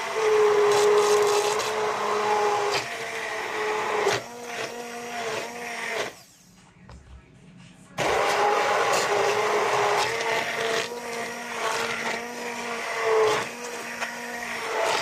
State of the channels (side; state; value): both; identical; correlation 1.00